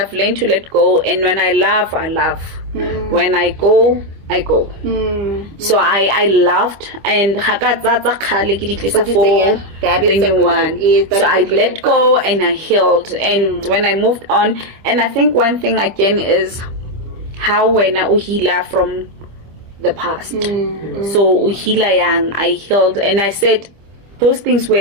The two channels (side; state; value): left; late; 25 ms